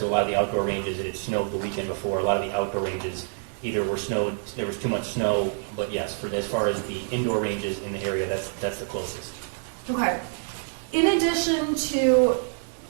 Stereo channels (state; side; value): silent; left; 60 dB below the other